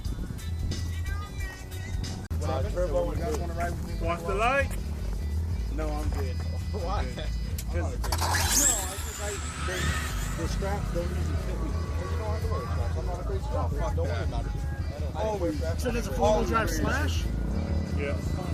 Turbo, you guys want to ride with me? Watch the light. No, I'm good. Why? The straps don't usually fit me. Well, you don't have to wear straps. I'm not a great strap. Don't worry about it. So there's a four-wheel drive Slash? Yeah.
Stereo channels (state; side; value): identical; both; correlation 1.00